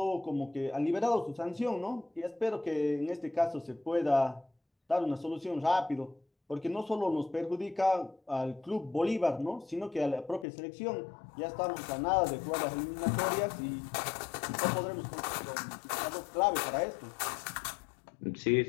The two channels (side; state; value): right; drops out; at 10.5 s